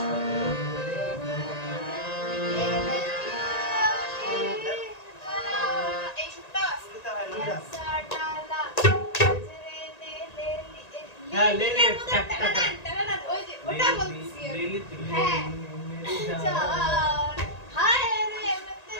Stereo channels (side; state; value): right; late; 1.9 ms